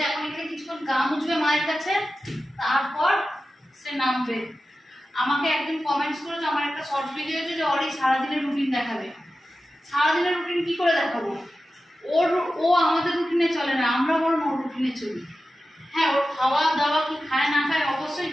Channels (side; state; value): both; normal; correlation 0.93